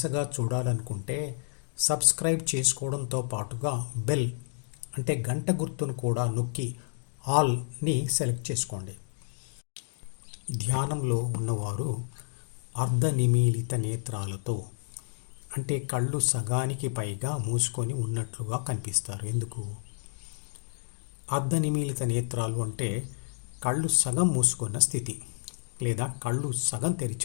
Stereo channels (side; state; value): right; silent; digital silence